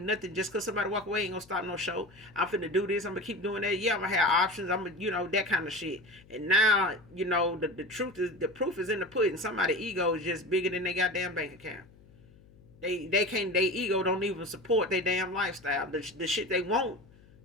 nothing. Just cause somebody walk away ain't gonna stop no show. I'm finna do this. I'm gonna keep doing that. Yeah, I'm gonna have options. I'm gonna, you know, that kind of shit. And now, you know, the truth is, the proof is in the pudding. Somebody's ego is just bigger than their goddamn bank account. They can't, their ego don't even support their damn lifestyle. The shit they want,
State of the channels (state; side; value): noise; left; hum, 25 dB below the sound